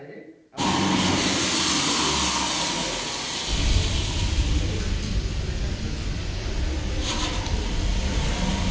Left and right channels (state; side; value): identical; both; correlation 1.00